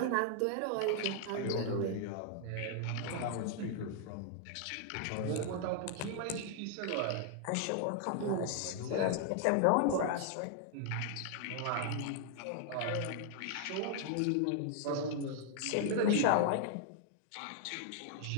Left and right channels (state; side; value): different; both; correlation 0.00